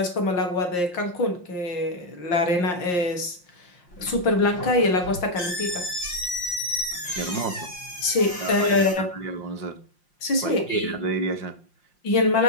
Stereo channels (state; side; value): late; right; 5.7 ms